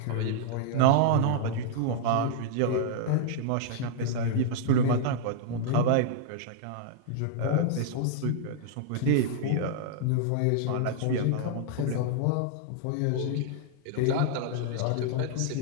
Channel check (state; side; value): different; both; correlation -0.01